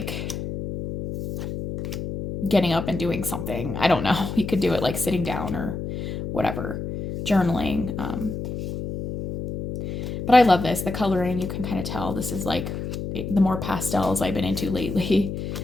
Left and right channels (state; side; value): noise; left; hum, 5 dB below the sound